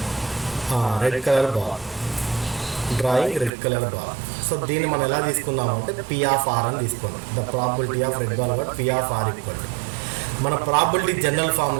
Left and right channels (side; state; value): left; drops out; at 3.5 s